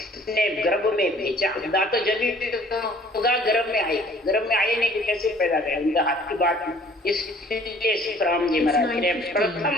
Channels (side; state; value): both; normal; correlation 0.54